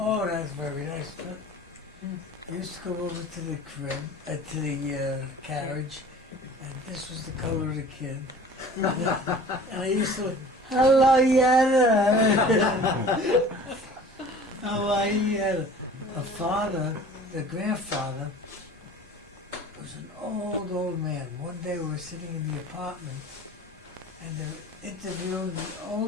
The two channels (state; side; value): normal; both; correlation 0.44